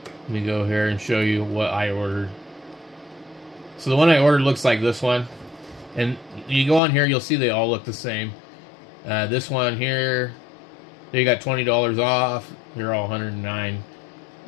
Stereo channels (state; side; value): drops out; right; at 6.8 s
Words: let me go here and show you what I ordered. So the one I ordered looks like this one. And you go on here, you'll see they all look the same. This one here, they got $20 off. They're all $109.